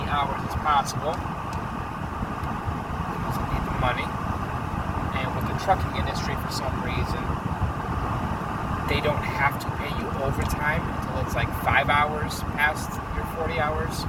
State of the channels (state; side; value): identical; both; correlation 1.00